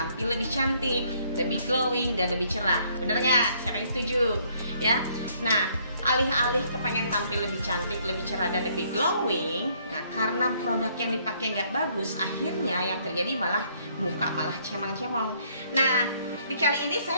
lebih cantik, lebih glowing dan lebih cerah. Bener nggak? Siapa yang setuju? Ya. Nah, alih-alih kepengen tampil lebih cantik, lebih cerah dan lebih glowing, nah karena produk yang dipakai nggak bagus, akhirnya yang terjadi malah muka malah cemang-cemong. Nah, di kali ini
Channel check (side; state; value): both; inverted; correlation -0.66